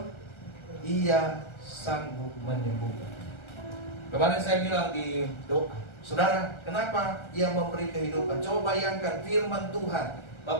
Ia sanggup menyembuhkan. Kemarin saya bilang di doa, saudara, kenapa ia memberi kehidupan? Coba bayangkan firman Tuhan.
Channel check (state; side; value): late; right; 1.3 ms